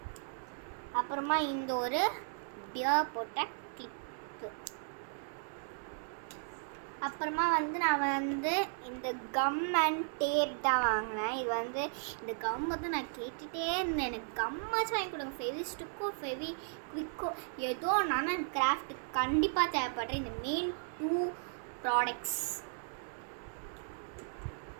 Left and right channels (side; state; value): left; silent; digital silence